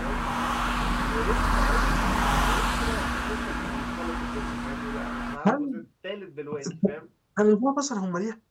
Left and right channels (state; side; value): identical; both; correlation 1.00